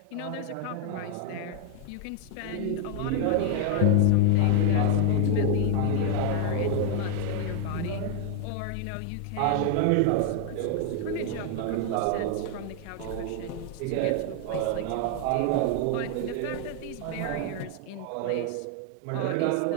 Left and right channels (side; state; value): both; different; correlation 0.00